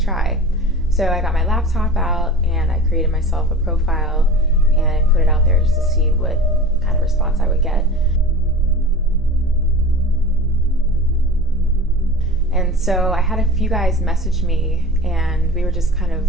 try. So I got my laptop out and I created myself a profile and I put it out there just to see what kind of response I would get. And so I had a few guys message me and we were just kind of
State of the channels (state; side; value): normal; both; correlation 0.37